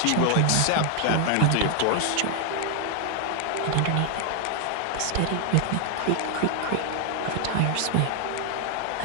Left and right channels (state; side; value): different; both; correlation 0.00